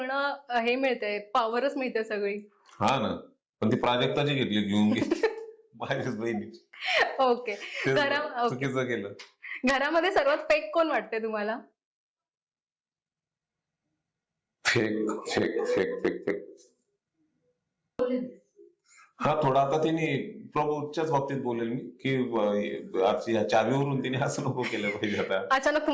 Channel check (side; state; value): both; identical; correlation 1.00